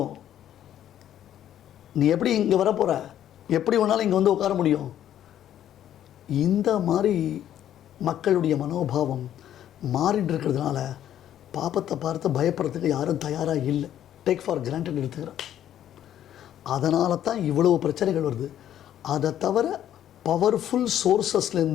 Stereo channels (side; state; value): right; quieter; 11.1 dB